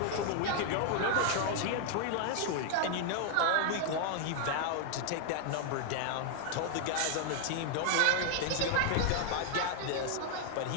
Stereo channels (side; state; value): both; different; correlation 0.00